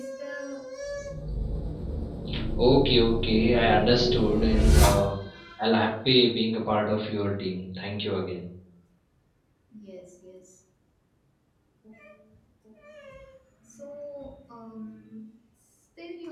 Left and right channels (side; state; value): both; identical; correlation 1.00